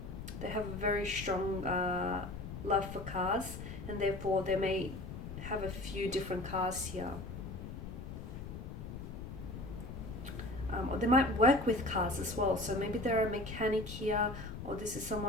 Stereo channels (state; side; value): noise; left; rumble, 9 dB below the sound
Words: have a very strong love for cars, and therefore they may have a few different cars here. Or they might work with cars as well, so maybe they're a mechanic here, or this is